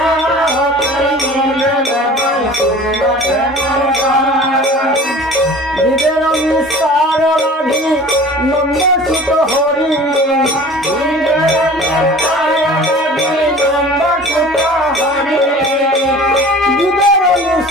জীবের নিস্তার লাগি নন্দ সুত হরি জীবের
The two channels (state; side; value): normal; both; correlation 0.43